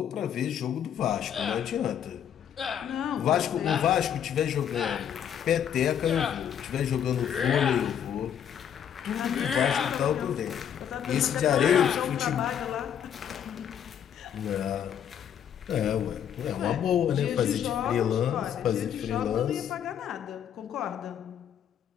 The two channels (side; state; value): right; quieter; 9.0 dB